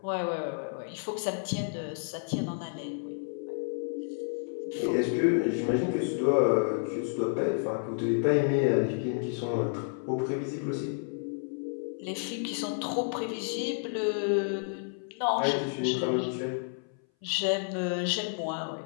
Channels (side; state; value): right; silent; 57 dB below the other